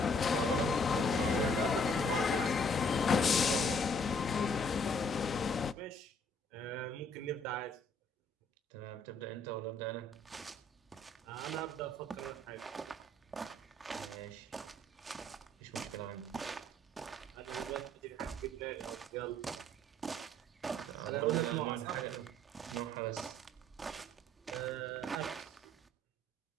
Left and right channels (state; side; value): normal; both; correlation 0.63